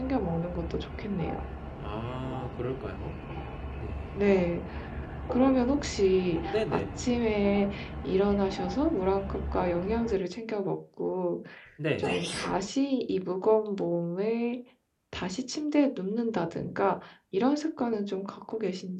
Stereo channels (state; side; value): identical; both; correlation 1.00